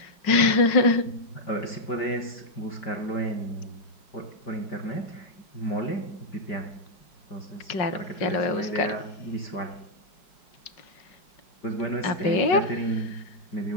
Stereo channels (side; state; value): right; late; 5.4 ms